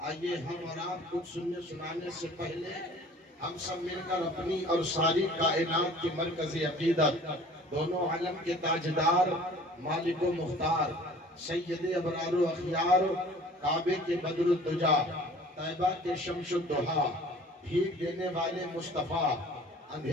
آئیے ہم اور آپ کچھ سننے سنانے سے پہلے ہم سب مل کر اپنی اور ساری کائنات کی مرکزی عقیدت، دونوں عالم کے تاجدار، مالک و مختار، سید ابرار و اخیار، کعبے کے بدر الدجا، طیبہ کے شمس الدحا، بھیگ دینے والے مصطفیٰ،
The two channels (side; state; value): both; normal; correlation 0.48